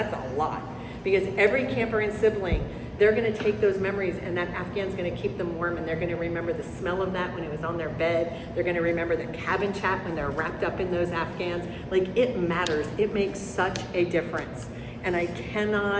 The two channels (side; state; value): both; identical; correlation 1.00